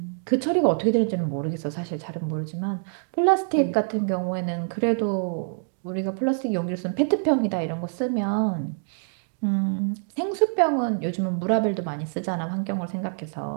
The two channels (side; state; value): left; silent; digital silence